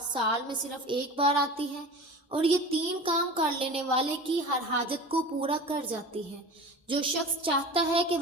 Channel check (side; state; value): both; normal; correlation 0.35